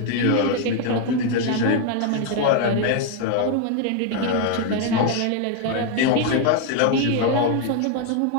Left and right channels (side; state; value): both; different; correlation 0.01